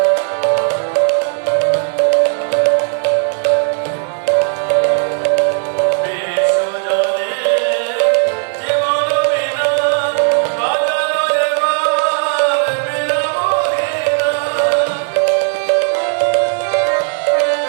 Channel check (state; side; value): silent; left; 61 dB below the other